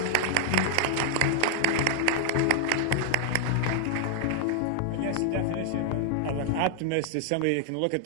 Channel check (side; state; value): both; different; correlation -0.01